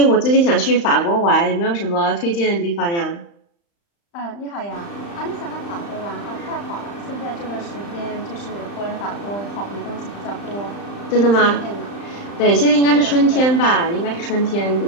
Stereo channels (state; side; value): late; right; 35 ms